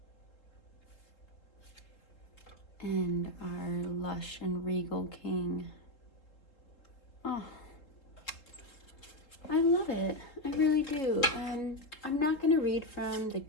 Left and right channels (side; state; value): right; late; 3.7 ms